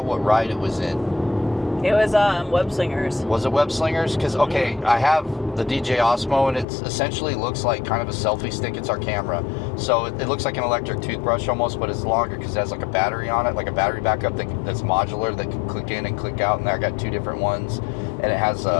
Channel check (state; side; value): drops out; right; at 6.7 s